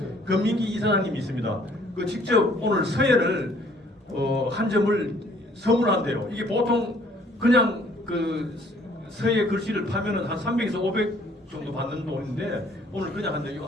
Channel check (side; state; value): both; normal; correlation 0.60